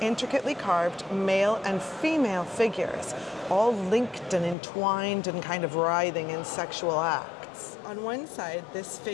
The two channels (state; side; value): drops out; right; at 4.5 s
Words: intricately carved male and female figures, all linked and entwined and kind of writhing in sexual acts. On one side, this